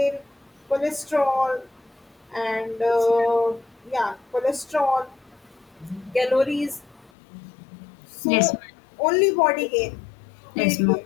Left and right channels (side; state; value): right; drops out; at 7.1 s